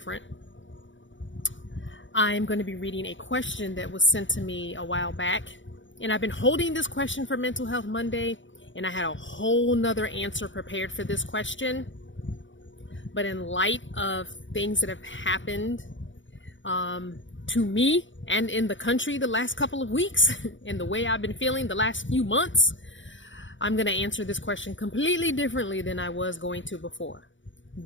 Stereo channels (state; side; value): late; right; 0.55 ms